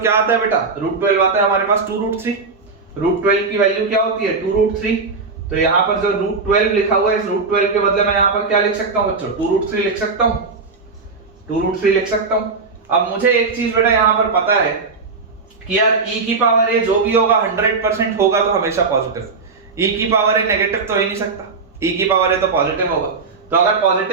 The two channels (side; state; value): left; quieter; 4.4 dB